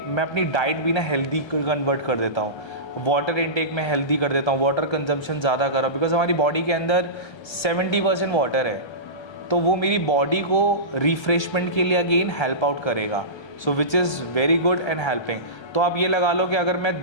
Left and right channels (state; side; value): late; right; 1.3 ms